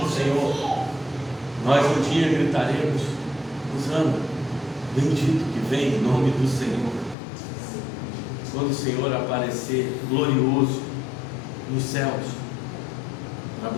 do Senhor, nós um dia gritaremos: Hosana, bendito que vem em nome do Senhor, quando o Senhor aparecer glorioso nos céus para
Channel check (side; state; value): right; drops out; at 7.2 s